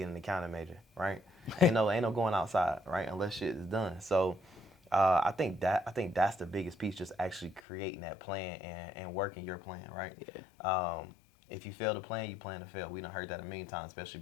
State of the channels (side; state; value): right; drops out; at 7.6 s